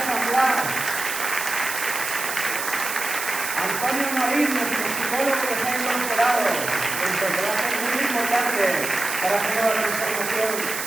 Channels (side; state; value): right; noise; hiss, 5 dB below the sound